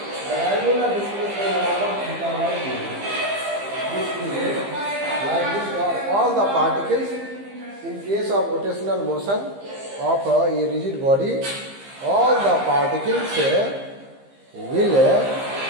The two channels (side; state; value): left; late; 15 ms